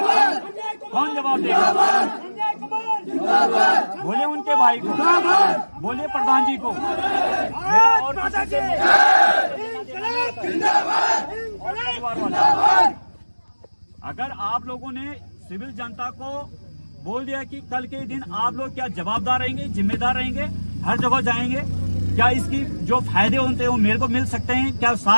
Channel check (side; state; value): both; inverted; correlation -1.00